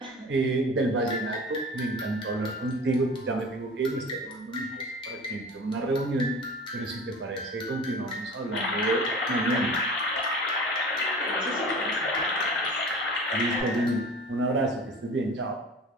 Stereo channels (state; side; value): normal; both; correlation 0.39